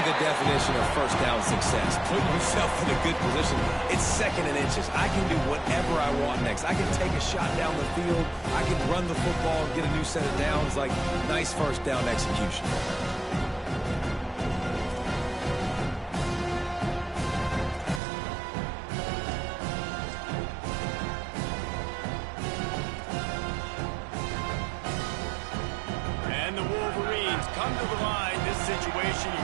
the definition of first down success. Putting yourself in a good position. It's second and inches. I can do whatever I want next. I can take a shot down the field. I can run the football and get a new set of downs. Like, nice first down execution. And the Wolverines come to the line. This situation, you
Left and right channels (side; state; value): left; drops out; at 18.0 s